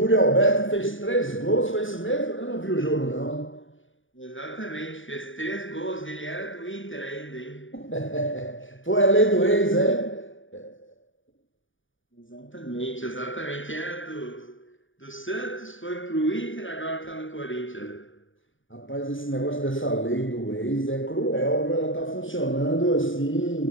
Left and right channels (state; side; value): late; right; 0.57 ms